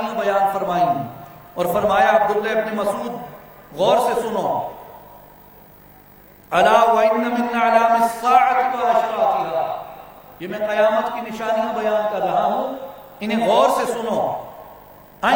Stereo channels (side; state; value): both; identical; correlation 1.00